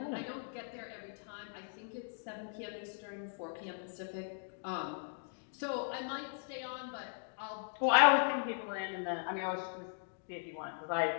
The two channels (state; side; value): silent; right; digital silence